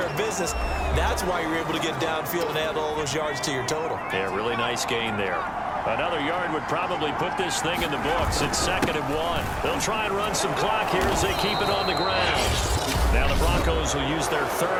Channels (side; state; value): both; identical; correlation 1.00